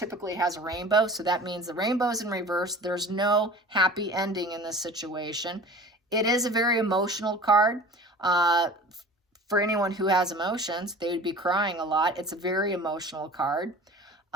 has a rainbow, so that means the rainbow's in reverse. There's no happy ending in this situation. It is a very emotional card. For anyone who has emotions, they would be crying a lot. It's a very emotional card.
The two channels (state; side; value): normal; both; correlation 0.40